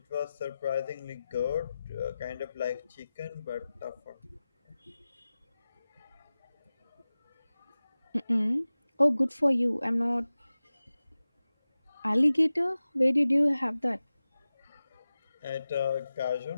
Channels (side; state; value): both; inverted; correlation -0.96